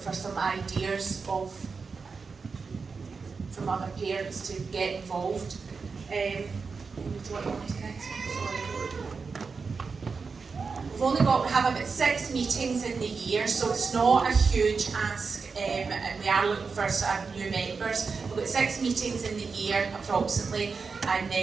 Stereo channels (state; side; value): quieter; left; 4.9 dB